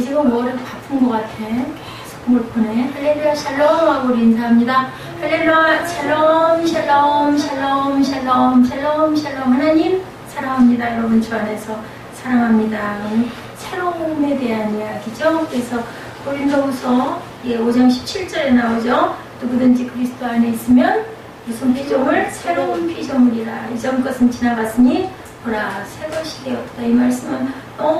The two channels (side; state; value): both; identical; correlation 1.00